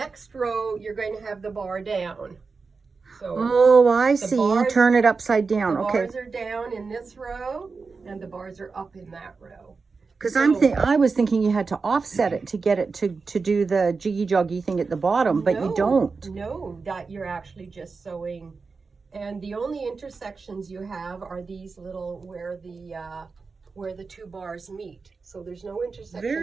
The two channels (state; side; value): quieter; left; 4.6 dB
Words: row you're going to have the bar down. So oh, I see. You turn it upside down. The Okay. bars are down in this row, and the bars are up in that row. Because I was thinking you had to offset it to get it to do the jiggy joggy thing at the bottom, but you don't. No, that you're actually just sewing, and the only intersections you have are these little where the two bars meet. So there's no intersections